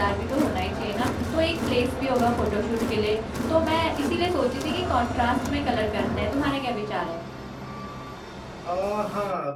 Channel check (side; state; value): both; identical; correlation 1.00